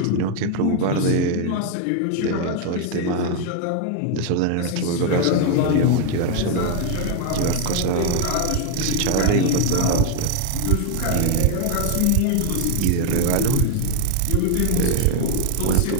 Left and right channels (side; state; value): both; different; correlation 0.00